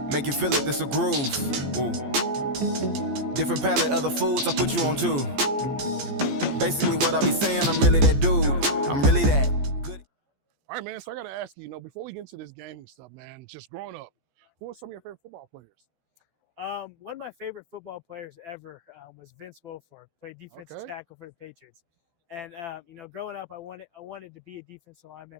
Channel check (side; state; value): left; late; 14 ms